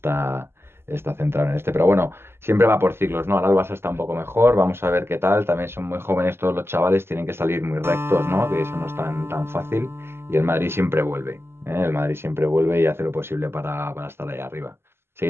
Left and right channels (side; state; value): left; late; 0.12 ms